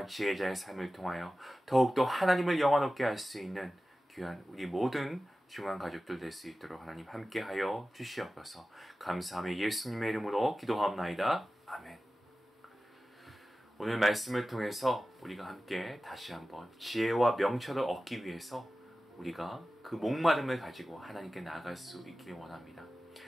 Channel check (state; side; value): normal; both; correlation 0.95